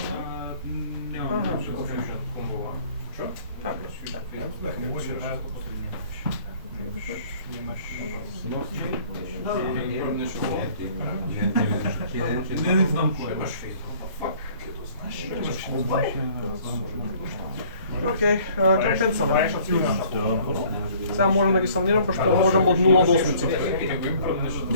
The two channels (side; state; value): both; inverted; correlation -0.55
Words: Не знам кој е. Окей, кампен сам. Сега можам да ги самнирам, пошто можам од 0 до 8.